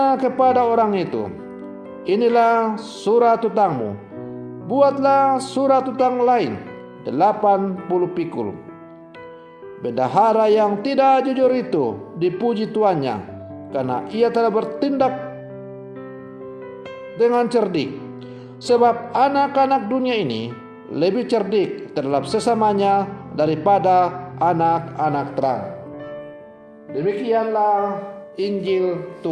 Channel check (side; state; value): both; identical; correlation 1.00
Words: kepada orang itu, "Inilah surat hutangmu. Buatlah surat hutang lain, 80 pikul." Bendahara yang tidak jujur itu dipuji tuannya, karena ia telah bertindak dengan cerdik. Sebab anak-anak dunia ini lebih cerdik terhadap sesamanya daripada anak-anak terang. Demikianlah Injil